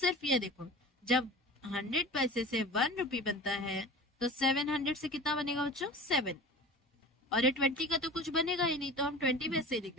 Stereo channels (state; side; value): normal; both; correlation 0.37